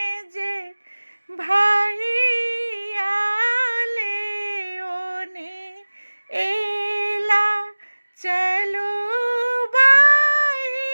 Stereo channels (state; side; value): inverted; both; correlation -1.00